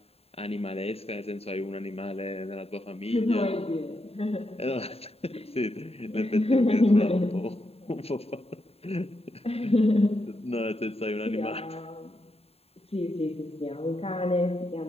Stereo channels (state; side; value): late; right; 0.29 ms